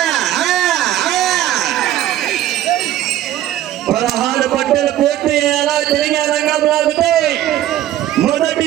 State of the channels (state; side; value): quieter; left; 12.9 dB